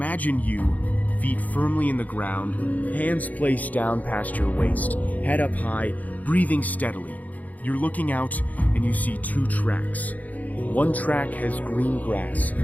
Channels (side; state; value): right; late; 0.077 ms